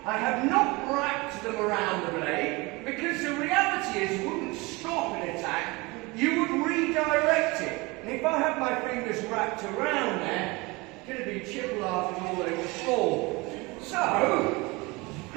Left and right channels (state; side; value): quieter; left; 24.5 dB